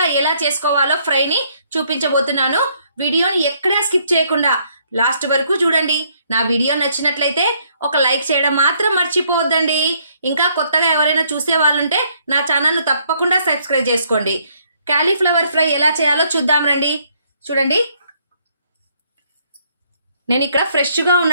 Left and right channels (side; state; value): both; inverted; correlation -0.68